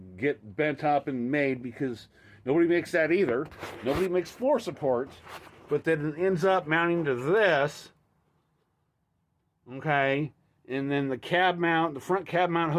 bent up and made because nobody makes that either. Nobody makes floor supports, but then it ends up mounting to this. Okay, and then the cab mount, the front cab mount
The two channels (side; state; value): both; identical; correlation 1.00